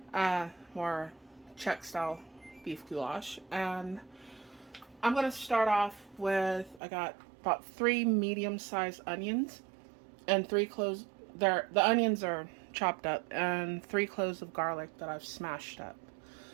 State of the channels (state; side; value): drops out; left; at 6.8 s